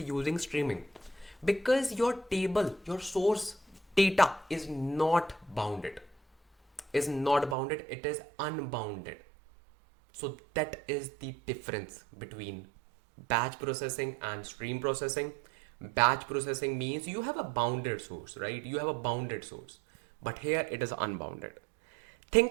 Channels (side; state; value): left; drops out; at 7.6 s